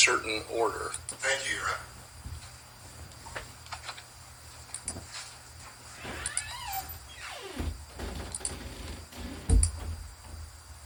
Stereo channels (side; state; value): both; identical; correlation 1.00